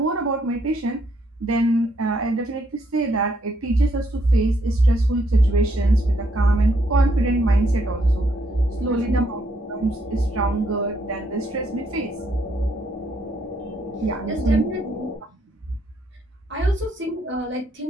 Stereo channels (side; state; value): both; normal; correlation 0.73